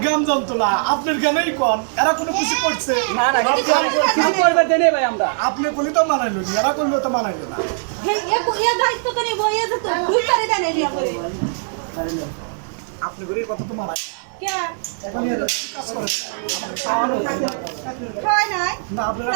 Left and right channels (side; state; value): left; silent; 60 dB below the other